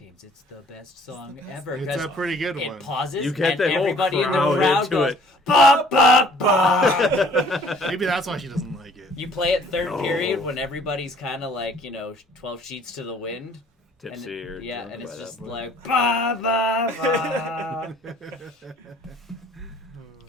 it's the best song ever. It's 'cause a pretty good it one. pauses, You get and the whole everybody in the crowd crowd into goes, it. ba, ba, ba. Maybe that's why she doesn't like it. You play it third No. period when everybo's kind of like, 12 sheets to the wind. Tipsy and or yeah, drunk and it's by that just point. like ba ba ba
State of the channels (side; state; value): both; normal; correlation 0.56